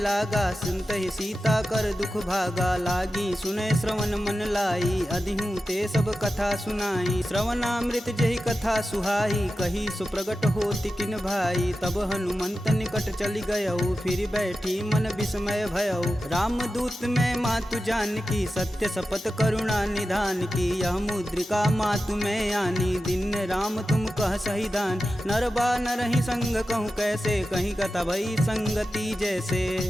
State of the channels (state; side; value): normal; both; correlation 0.92